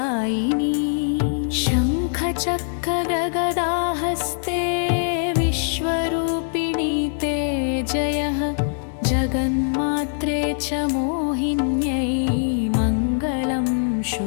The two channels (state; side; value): silent; right; 64 dB below the other